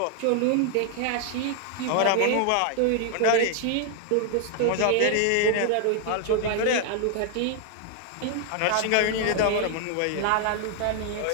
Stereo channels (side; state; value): both; different; correlation 0.01